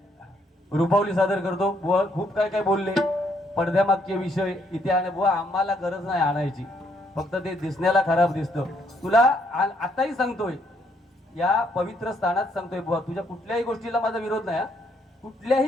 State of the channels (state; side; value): normal; both; correlation 0.71